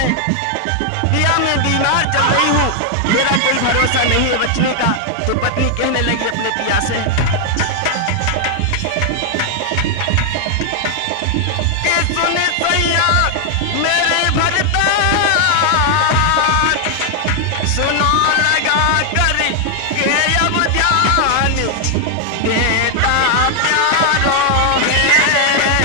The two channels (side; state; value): both; different; correlation 0.00